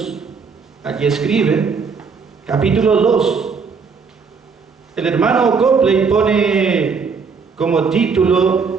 allí escribe, capítulo 2, el hermano Copley pone como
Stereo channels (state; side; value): quieter; left; 5.4 dB